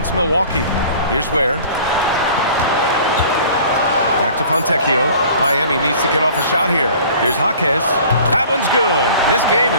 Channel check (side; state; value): both; inverted; correlation -0.47